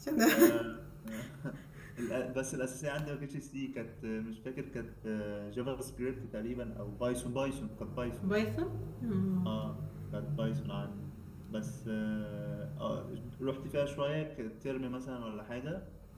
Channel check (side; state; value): both; identical; correlation 1.00